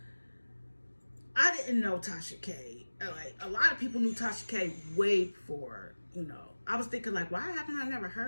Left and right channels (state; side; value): inverted; both; correlation -1.00